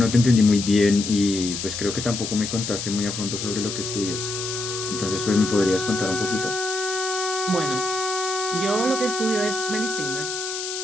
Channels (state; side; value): noise; left; hiss, 5 dB below the sound